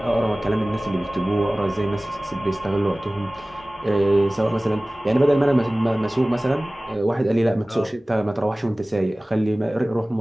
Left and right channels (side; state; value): both; normal; correlation 0.98